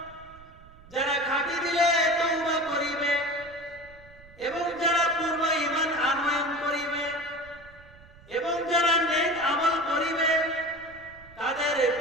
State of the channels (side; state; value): right; noise; rumble, 23 dB below the sound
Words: যারা খাঁটি দিলে তওবা করিবে এবং যারা পূর্ব ঈমান আনয়ন